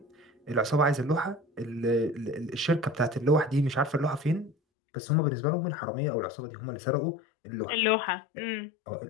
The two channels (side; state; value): right; drops out; at 4.5 s